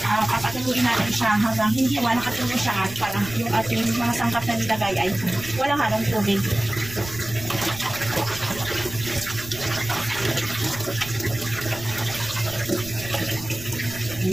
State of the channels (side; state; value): right; noise; rumble, 15 dB below the sound